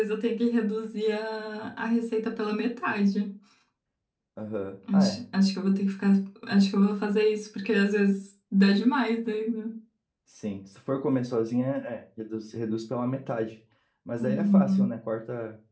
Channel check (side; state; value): both; identical; correlation 1.00